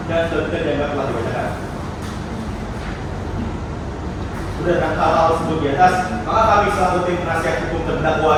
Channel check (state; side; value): identical; both; correlation 1.00